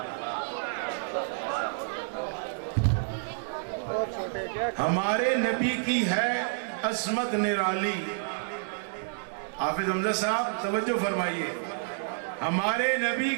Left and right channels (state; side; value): silent; left; digital silence